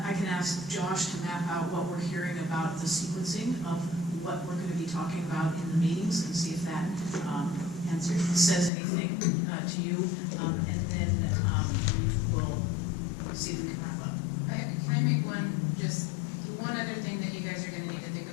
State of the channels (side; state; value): right; drops out; at 8.7 s